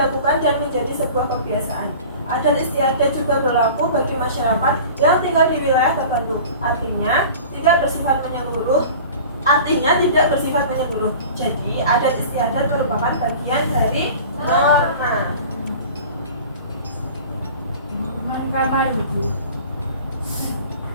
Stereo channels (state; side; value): inverted; both; correlation -0.40